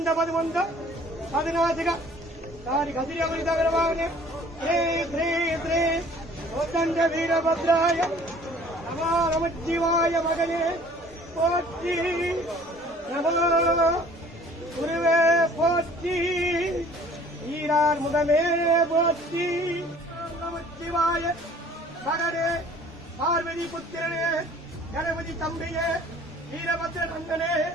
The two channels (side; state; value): both; normal; correlation 0.52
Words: పదమంద పదినాసిక దాని కసిరమణి తగలవాగనే శ్రీ శ్రీ శ్రీ కోదండ వీరభద్రాయ నమో నమశివాయ మగనే போற்றி நமோ குருவே போற்றி ஈரார் முதமே போற்றி நமச்சிவாய மகனே பார்வதி புத்திரனே கணபதி தம்பியே வீரபத்ர நந்தனே